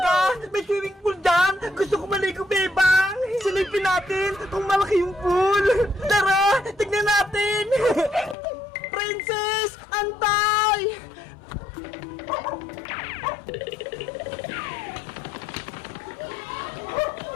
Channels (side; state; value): right; drops out; at 8.3 s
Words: May swimming pool dyan? Gusto ko maligo, Bebang! Silipin natin kung malaki yung pool! Tara! Tignan natin! Princess! Antay!